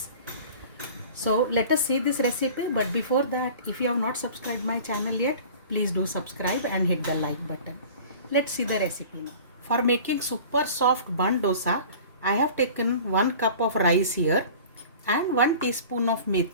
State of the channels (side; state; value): both; inverted; correlation -0.42